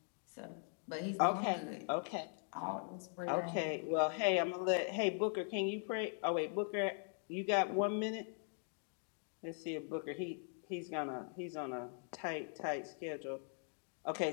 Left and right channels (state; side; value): silent; right; 51 dB below the other